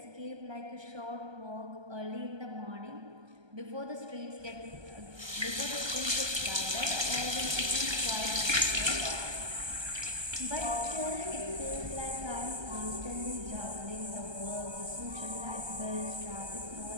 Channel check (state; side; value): late; left; 1.2 ms